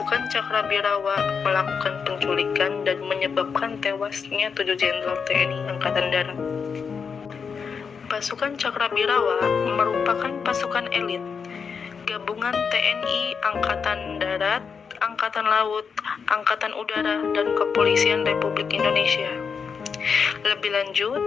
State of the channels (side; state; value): right; quieter; 6.0 dB